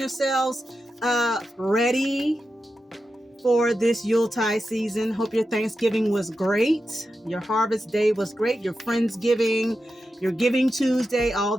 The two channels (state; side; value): normal; both; correlation 0.90